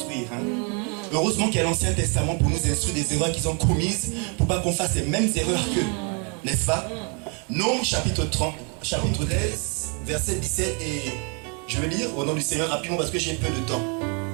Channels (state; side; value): quieter; left; 35.9 dB